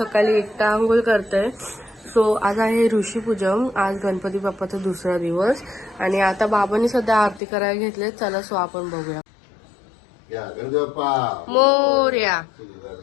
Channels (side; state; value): right; drops out; at 7.4 s